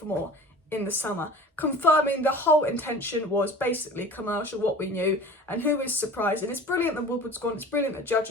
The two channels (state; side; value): normal; both; correlation 0.40